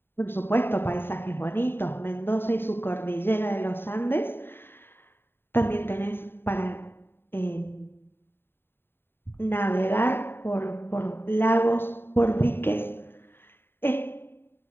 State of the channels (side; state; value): right; late; 0.11 ms